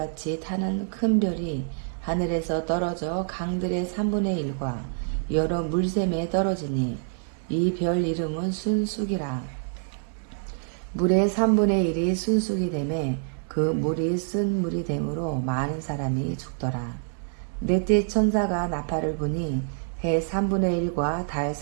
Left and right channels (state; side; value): silent; left; 61 dB below the other